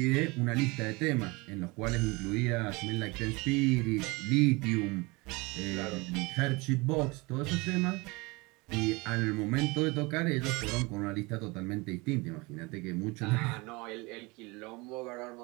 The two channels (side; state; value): left; quieter; 25.3 dB